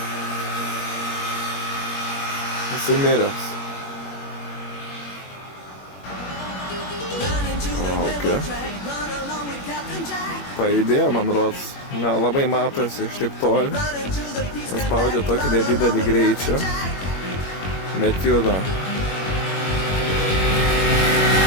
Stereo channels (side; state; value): right; late; 21 ms